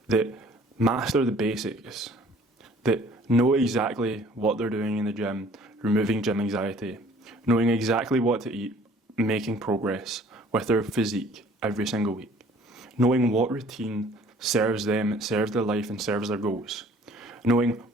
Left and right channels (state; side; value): normal; both; correlation 0.54